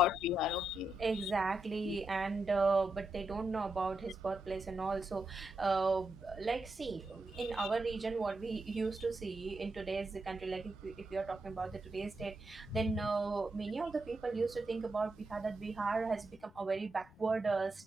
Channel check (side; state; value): both; normal; correlation 0.85